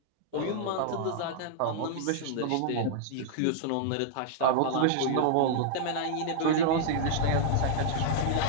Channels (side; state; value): both; different; correlation -0.01